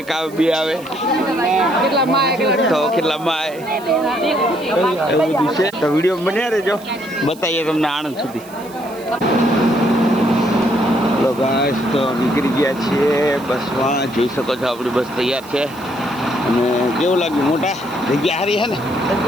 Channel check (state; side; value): noise; right; hiss, 22 dB below the sound